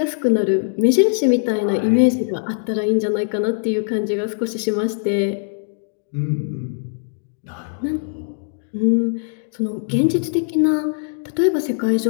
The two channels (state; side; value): silent; right; digital silence